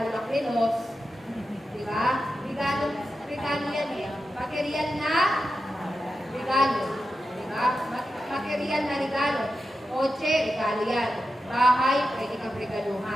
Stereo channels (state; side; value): normal; both; correlation 0.90